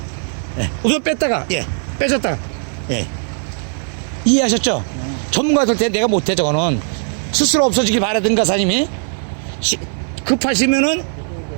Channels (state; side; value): silent; left; 57 dB below the other